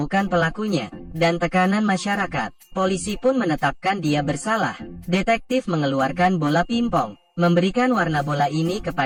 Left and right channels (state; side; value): identical; both; correlation 1.00